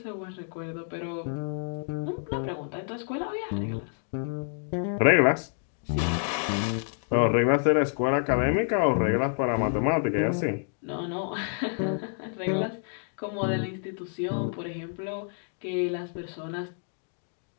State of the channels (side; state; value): right; silent; 59 dB below the other